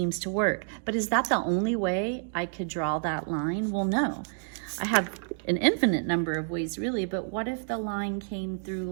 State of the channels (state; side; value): silent; left; digital silence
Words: to work. But is that the only way I could draw that line? Well, no. I have an infinite number of ways really, but what if the line came through